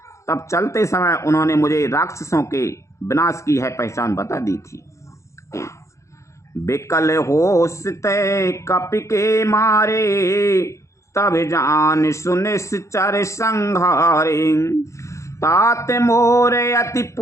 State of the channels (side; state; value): right; late; 0.14 ms